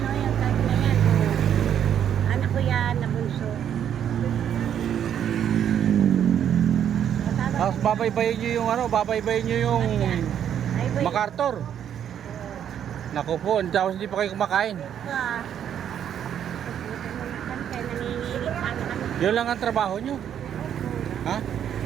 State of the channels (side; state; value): left; quieter; 9.4 dB